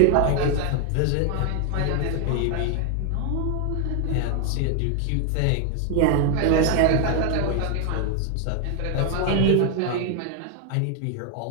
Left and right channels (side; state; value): both; different; correlation 0.01